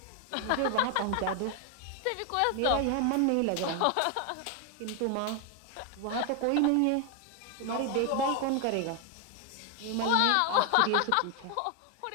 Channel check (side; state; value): both; different; correlation 0.01